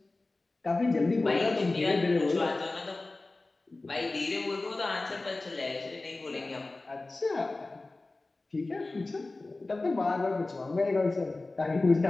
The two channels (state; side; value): quieter; right; 3.2 dB